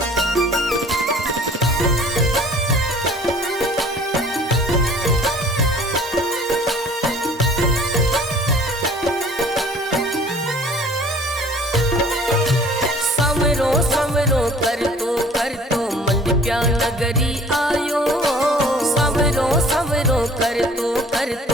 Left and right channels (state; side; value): normal; both; correlation 0.51